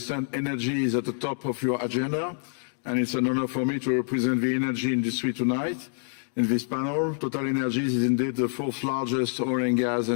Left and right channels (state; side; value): silent; right; digital silence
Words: energy is at the top of your agenda, and it's an honor for me to represent the energy industry tonight. in this panel. Total Energies is indeed the fourth largest oil and gas